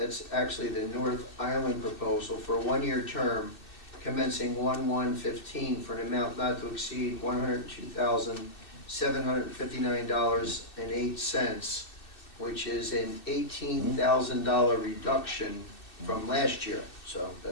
actually the North Island proposal for a one-year term commencing 1/1/15 for an amount not to exceed $102,759.08, which is an $18,000 reduction from last year. So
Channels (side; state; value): right; late; 2.6 ms